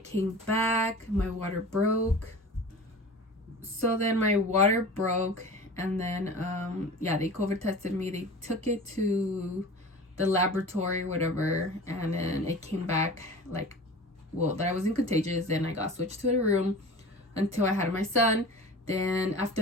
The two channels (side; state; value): both; normal; correlation 0.37